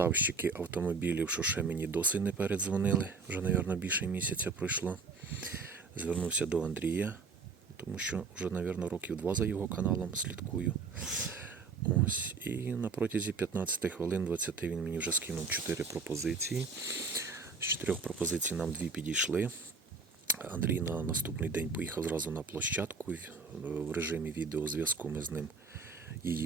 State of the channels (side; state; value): left; quieter; 4.5 dB